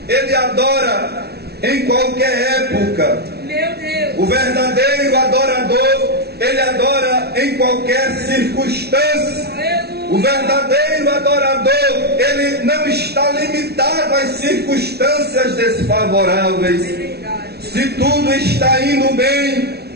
ele adora em qualquer época. O verdadeiro adorador, ele adora em qualquer circunstância. O verdadeiro adorador, ele não está limitado às circunstâncias desfavoráveis. Se tudo está indo bem,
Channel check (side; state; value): left; late; 0.47 ms